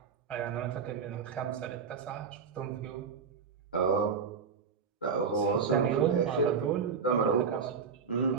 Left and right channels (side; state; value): left; quieter; 5.9 dB